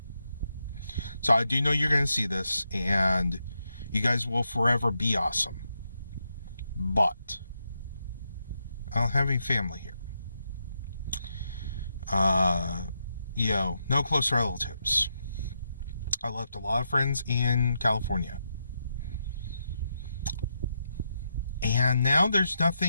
So I do know you're going to see this, and you guys will forever be awesome. But I don't have any family here. No close relatives. I left a lot of friends in California. And now there's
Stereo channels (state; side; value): inverted; both; correlation -0.83